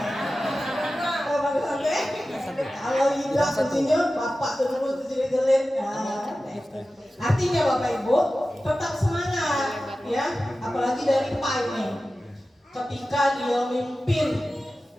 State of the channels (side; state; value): both; normal; correlation 0.95